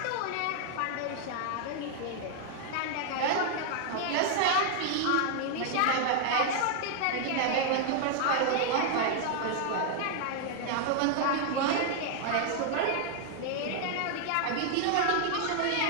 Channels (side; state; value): both; different; correlation 0.00